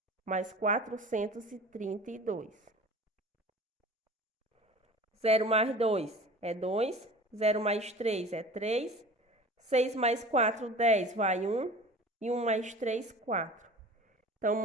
mais 432. 0 mais 2 é 2. 0 mais 3 é 3. 6 mais 4, 10, vai 1. E 1 mais 3, 4. Então, o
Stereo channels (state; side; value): normal; both; correlation 0.40